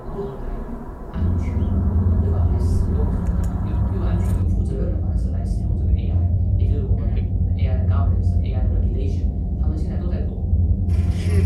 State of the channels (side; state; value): both; identical; correlation 1.00